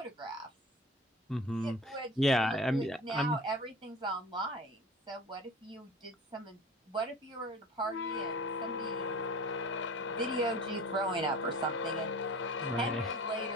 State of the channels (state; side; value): normal; both; correlation 0.40